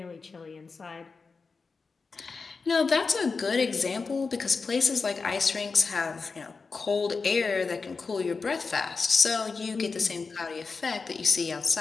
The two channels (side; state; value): right; quieter; 4.6 dB